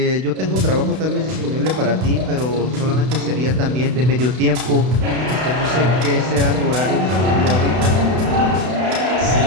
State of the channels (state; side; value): late; left; 32 ms